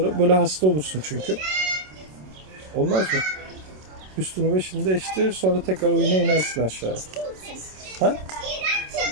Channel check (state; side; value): late; left; 27 ms